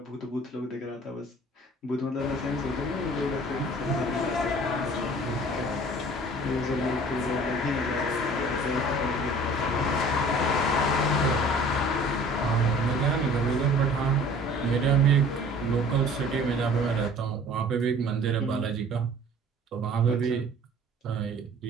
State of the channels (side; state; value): both; normal; correlation 0.48